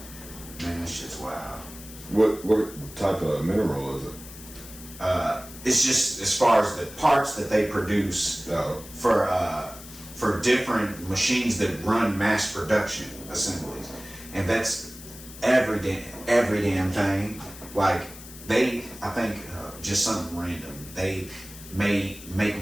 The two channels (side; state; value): left; noise; hiss, 16 dB below the sound